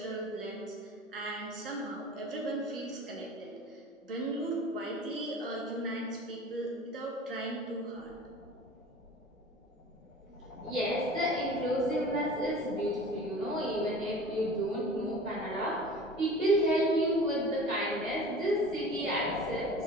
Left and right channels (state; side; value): normal; both; correlation 0.41